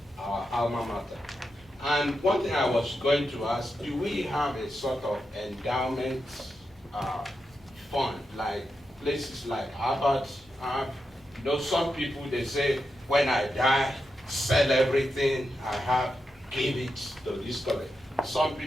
our alma mater. And one thing I was going to ask, do we have a sort of endowment fund, like places like Harvard have? You know, some people, they say, when I die, sell everything I have, give it to this college. Some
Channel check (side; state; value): both; normal; correlation 0.87